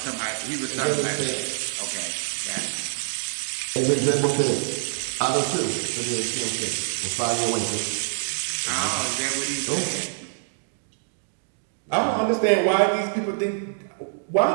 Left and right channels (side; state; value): left; silent; digital silence